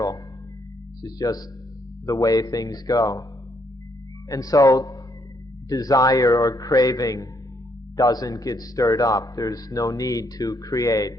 It's just the way things go. And so desire or craving doesn't get stirred up. There's no need to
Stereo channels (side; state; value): both; normal; correlation 0.73